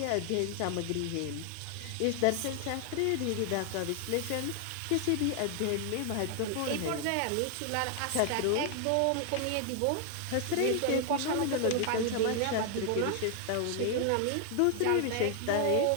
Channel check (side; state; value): both; different; correlation 0.00